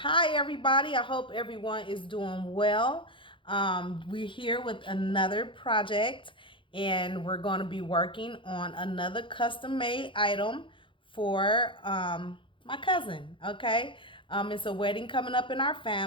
everybody, I hope everyone is doing well. We're here with another project, and we're going to be working on another custom made item for my cousin. Okay, it's a wedding coming up in our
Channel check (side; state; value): right; late; 0.25 ms